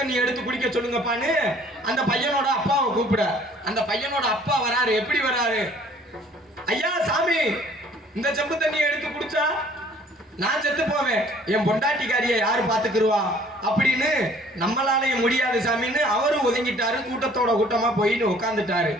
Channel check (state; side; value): normal; both; correlation 0.55